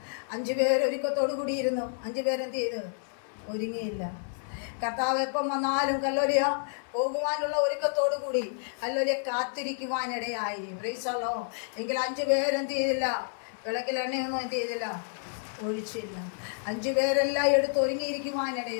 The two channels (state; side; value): silent; right; 57 dB below the other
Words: 5 പേര് ഒരുക്കത്തോടു കൂടി ഇരുന്നു. 5 പേരെന്ത് ചെയ്ത്? ഒരുങ്ങിയില്ല. കർത്താവ് എപ്പം വന്നാലും ഹല്ലേലൂയ പോകുവാനുള്ള ഒരുക്കത്തോടു കൂടി ഹല്ലേലൂയ കാത്തിരിക്കുവാനിടയായി. Praise the Lord. എങ്കിൽ 5 പേരെന്ത് ചെയ്തില്ല? വിളക്കിൽ എണ്ണയൊന്നും എന്ത് ചെയ്തില്ല? ഒഴിച്ചില്ല. 5 പേരെല്ലാം എടുത്ത്